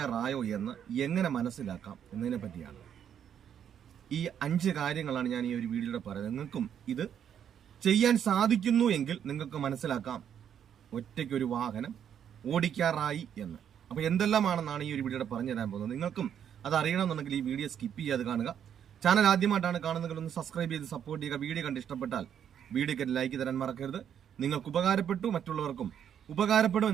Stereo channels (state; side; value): quieter; left; 8.9 dB